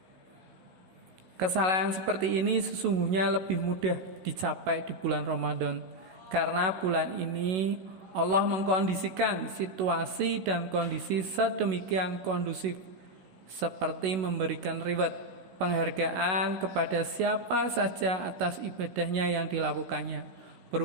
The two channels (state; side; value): late; left; 16 ms